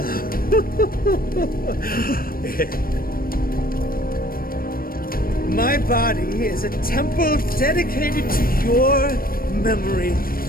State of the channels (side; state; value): right; late; 0.42 ms